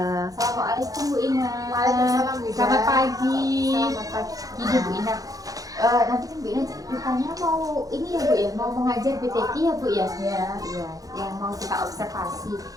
Assalamualaikum Bu Ina. Waalaikumsalam, Bu Ina. Selamat pagi. Selamat pagi. Gini Bu Ina. Nanti kan Bu Ina rupanya mau ini ya Bu ya, mau mengajar BTK ya Bu ya? Ya. Iya, yang mau kita observasi.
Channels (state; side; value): late; left; 0.17 ms